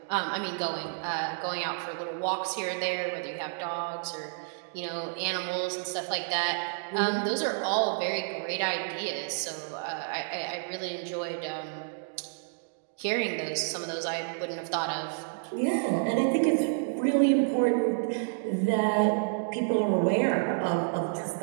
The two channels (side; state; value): left; silent; digital silence